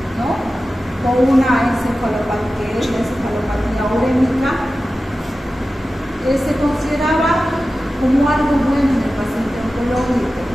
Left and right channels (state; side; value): normal; both; correlation 0.94